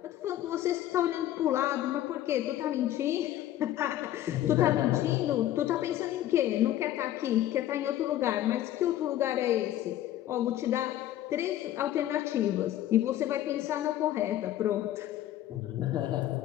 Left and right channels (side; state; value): right; quieter; 13.0 dB